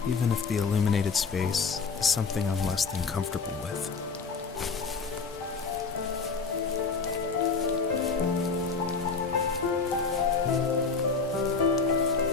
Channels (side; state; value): right; quieter; 4.9 dB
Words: even if the illuminated space is something I'm less than comfortable with.